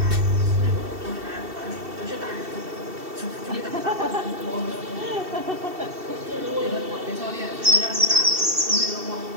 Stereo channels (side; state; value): left; late; 2.7 ms